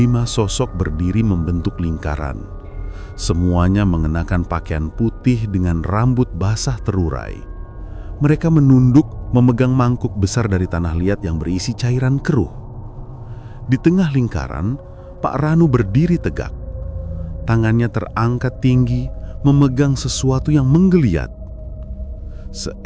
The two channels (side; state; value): both; identical; correlation 1.00